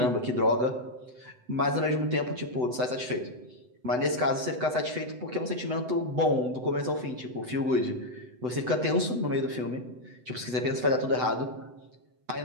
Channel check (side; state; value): left; late; 8.0 ms